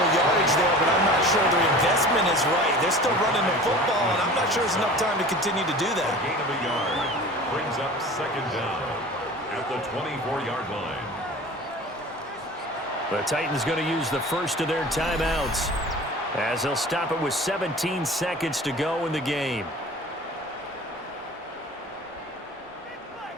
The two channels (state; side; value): normal; both; correlation 0.40